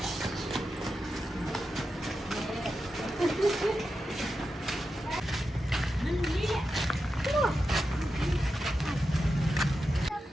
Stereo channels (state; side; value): normal; both; correlation 0.89